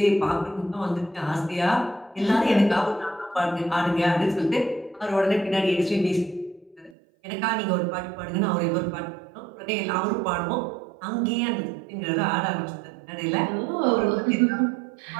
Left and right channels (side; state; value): left; drops out; at 6.9 s